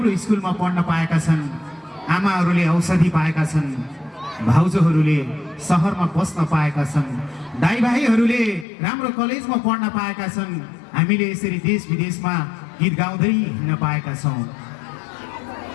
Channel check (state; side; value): drops out; right; at 8.7 s